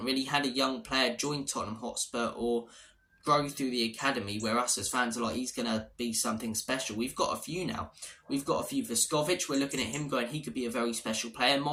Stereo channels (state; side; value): identical; both; correlation 1.00